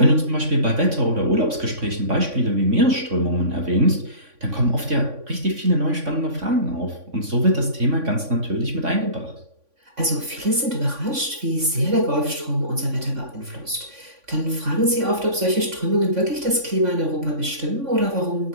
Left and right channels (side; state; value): left; late; 3.5 ms